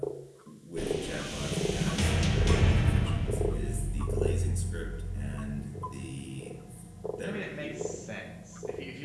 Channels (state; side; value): identical; both; correlation 1.00